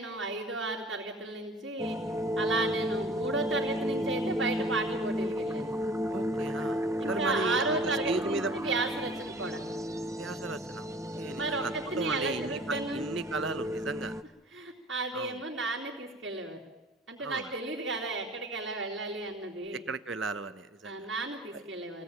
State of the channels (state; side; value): normal; both; correlation 0.47